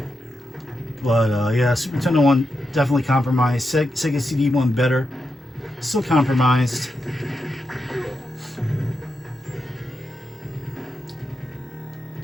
But yeah, Super Nintendo one definitely compromised. Sega CD one better. Still compromised.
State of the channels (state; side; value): normal; both; correlation 0.86